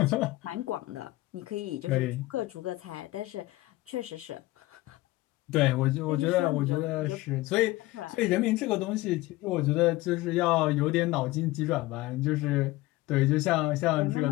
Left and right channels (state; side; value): quieter; right; 18.8 dB